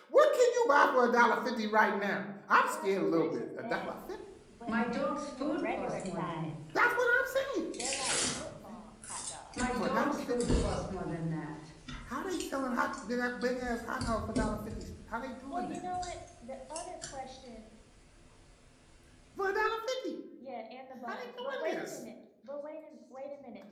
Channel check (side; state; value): both; identical; correlation 1.00